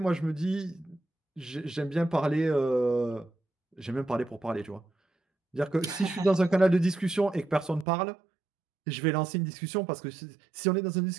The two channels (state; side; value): drops out; left; at 7.9 s